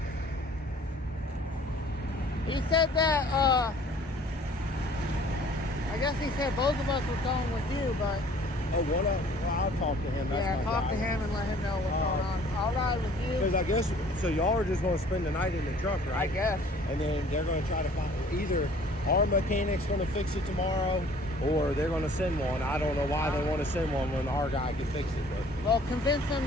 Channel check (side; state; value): both; normal; correlation 0.54